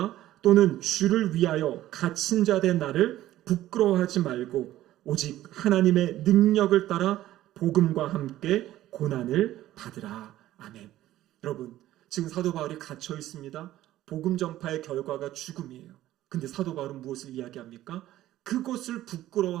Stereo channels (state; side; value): quieter; left; 14.3 dB